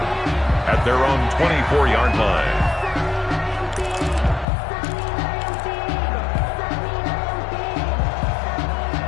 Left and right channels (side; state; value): right; drops out; at 4.5 s